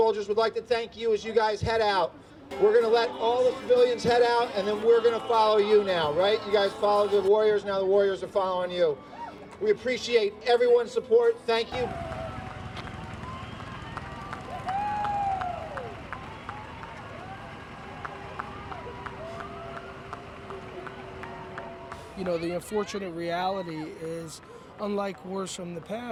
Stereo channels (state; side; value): identical; both; correlation 1.00